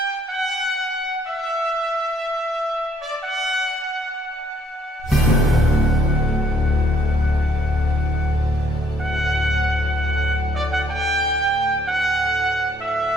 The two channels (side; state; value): both; normal; correlation 0.65